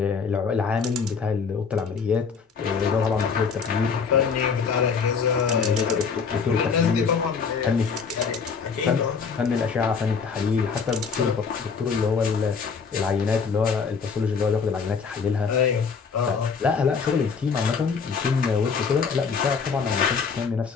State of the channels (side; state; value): right; quieter; 5.7 dB